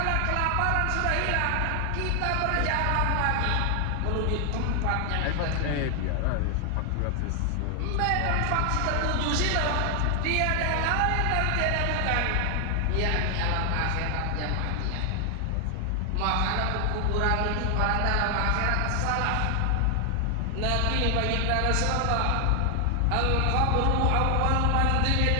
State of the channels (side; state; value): both; different; correlation 0.00